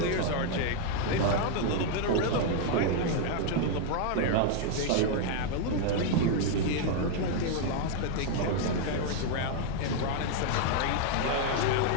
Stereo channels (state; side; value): different; both; correlation 0.00